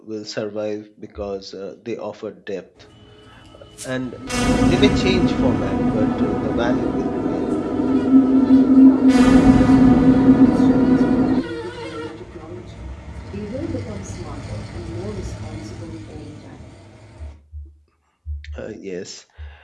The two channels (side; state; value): both; identical; correlation 1.00